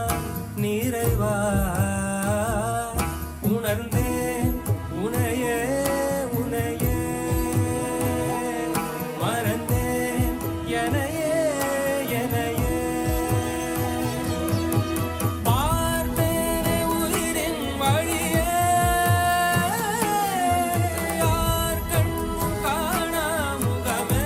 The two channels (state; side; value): identical; both; correlation 1.00